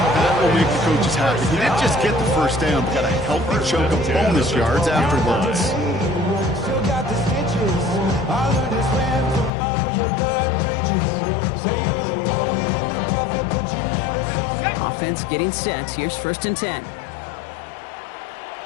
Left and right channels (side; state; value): right; drops out; at 9.5 s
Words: will make the coaches happy. He didn't just get the first down, but got a healthy chunk of bonus yards afterwards. Offense getting set. Here's 1st and 10.